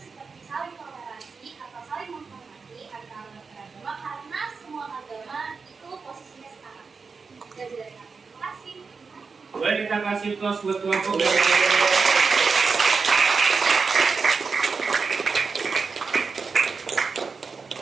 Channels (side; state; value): left; quieter; 4.9 dB